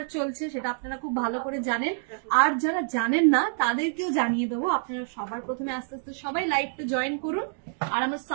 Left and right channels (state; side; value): silent; left; digital silence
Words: চলছে, সেটা আপনারা খুব ভালো করে জানেন। আর যারা জানেন না তাদেরকেও জানিয়ে দেবো। আপনারা সবার প্রথমে আস্তে আস্তে সবাই লাইভটা জয়েন করুন। আর আমার